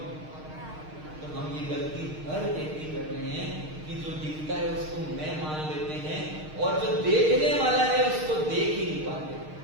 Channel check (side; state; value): left; late; 6.5 ms